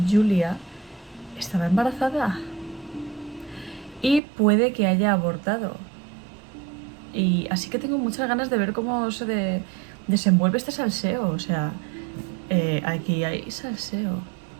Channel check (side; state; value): left; drops out; at 4.2 s